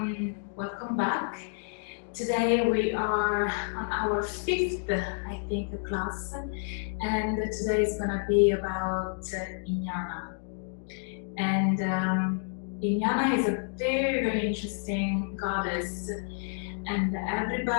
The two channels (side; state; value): right; silent; 58 dB below the other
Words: welcome back. Today we are on our fifth, I think, class, and today is gonna be about Inanna. And Inanna is a very, very interesting goddess, and